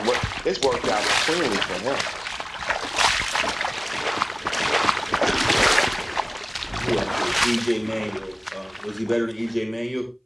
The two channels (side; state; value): both; identical; correlation 1.00